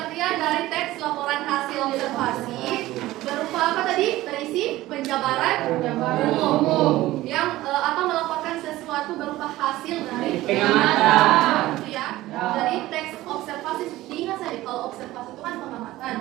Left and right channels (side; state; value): left; quieter; 16.8 dB